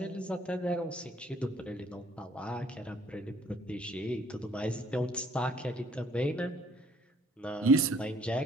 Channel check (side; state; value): both; normal; correlation 0.60